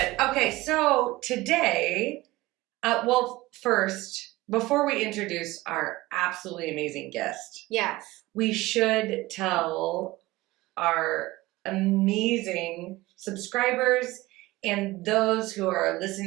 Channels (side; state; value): left; quieter; 19.3 dB